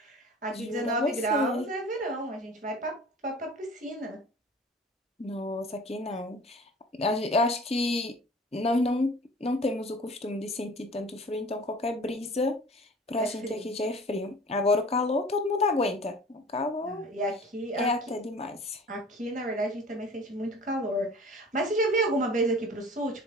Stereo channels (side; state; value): both; normal; correlation 0.44